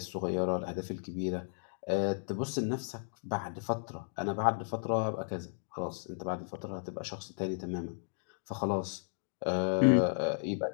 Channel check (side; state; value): right; silent; digital silence